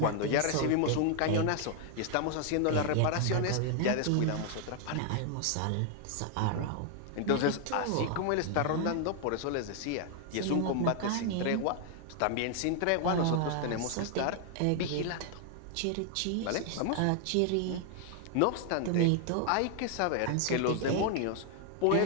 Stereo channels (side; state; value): both; different; correlation 0.00